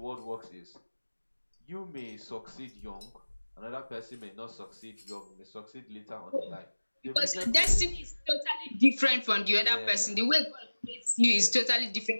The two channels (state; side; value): inverted; both; correlation -1.00